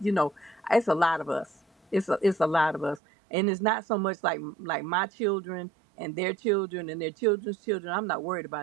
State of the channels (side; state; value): left; drops out; at 3.0 s